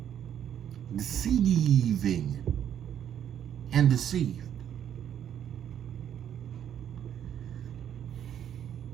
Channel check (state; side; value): quieter; left; 9.7 dB